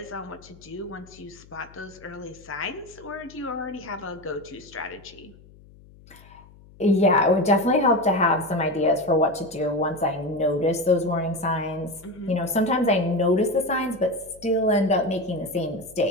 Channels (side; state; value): left; noise; hum, 24 dB below the sound